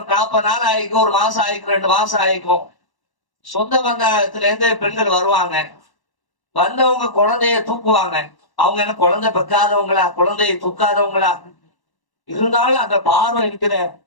40 நாள் ஆயிக்கும், ஒரு மாசம் ஆயிக்கும், 2 மாசம் ஆயிக்கும். சொந்த பந்தத்துல இருந்து பெண்கள் வருவாங்க, வந்தவங்க குழந்தைய தூக்குவாங்க. அவங்க என்ன குழந்தை பெக்காதவங்களா, குழந்தைய தூக்காதவங்களா? இருந்தாலும் அந்த பார்வை இருக்கிற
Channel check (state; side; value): late; right; 1.1 ms